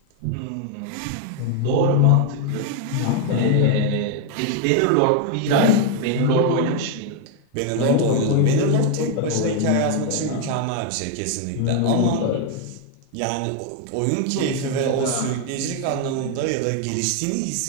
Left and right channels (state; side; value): different; both; correlation 0.01